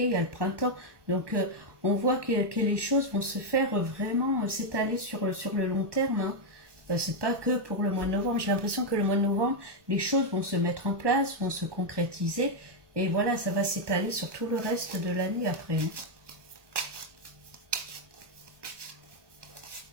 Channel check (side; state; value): left; late; 1.2 ms